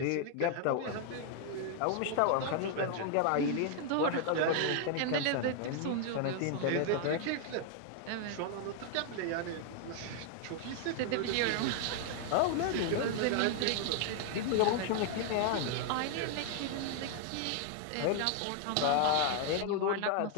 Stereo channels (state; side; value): different; both; correlation 0.00